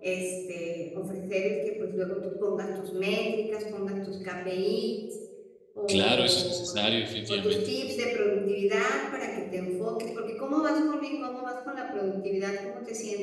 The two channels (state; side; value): identical; both; correlation 1.00